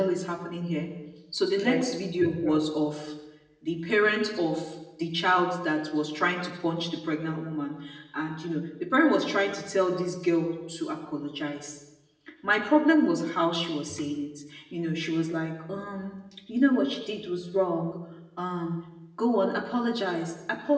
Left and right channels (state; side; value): identical; both; correlation 1.00